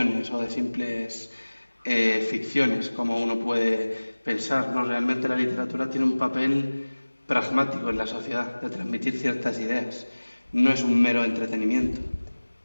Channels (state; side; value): inverted; both; correlation -1.00